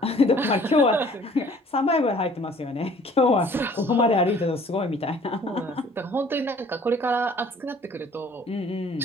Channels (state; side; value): normal; both; correlation 0.54